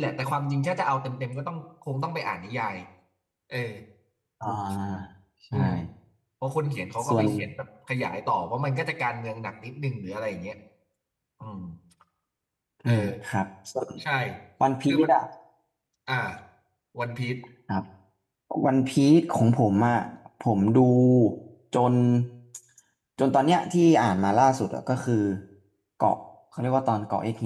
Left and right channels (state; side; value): identical; both; correlation 1.00